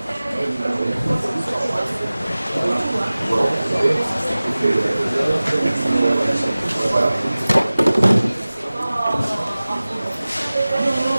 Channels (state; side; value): inverted; both; correlation -0.98